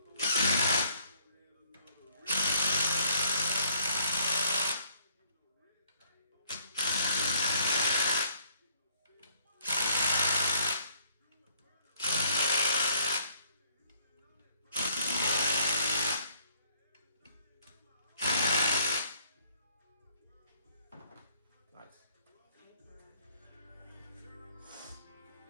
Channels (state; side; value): inverted; both; correlation -0.64